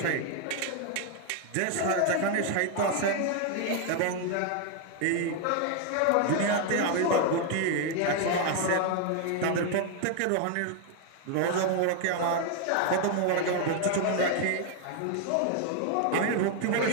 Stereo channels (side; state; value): both; different; correlation 0.00